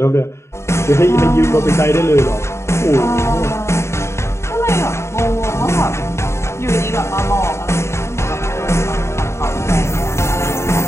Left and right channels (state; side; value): late; right; 0.13 ms